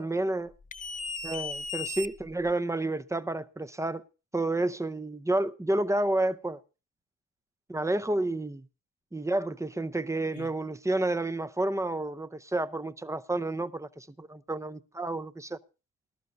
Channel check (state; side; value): normal; both; correlation 0.85